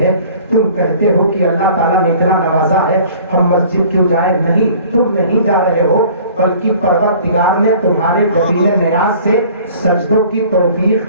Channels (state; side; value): inverted; both; correlation -0.49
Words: ہے. تم کہتے ہو کہ اللہ تعالیٰ نے اتنا نوازا ہے ہم مسجد کیوں جائیں. نہیں, تم نہیں جا رہے ہو بلکہ پروردگار نے تمہارے جبین نیاز سے سجدوں کی